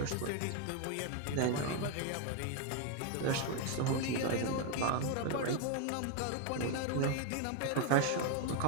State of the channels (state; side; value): different; both; correlation 0.01